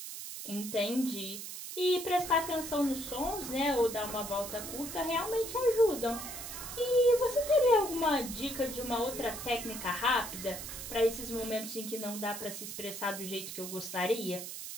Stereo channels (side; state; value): right; noise; hiss, 8 dB below the sound